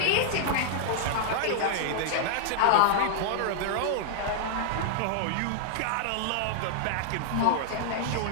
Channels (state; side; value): different; both; correlation -0.01